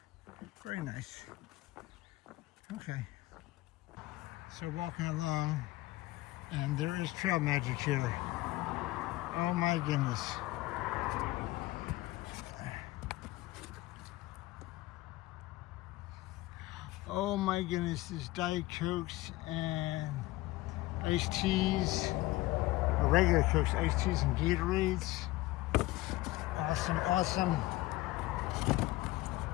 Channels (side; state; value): right; quieter; 18.7 dB